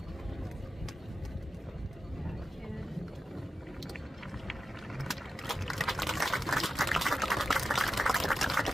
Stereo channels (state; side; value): normal; both; correlation 0.91